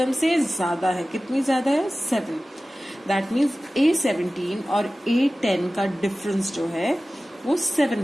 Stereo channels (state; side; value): normal; both; correlation 0.96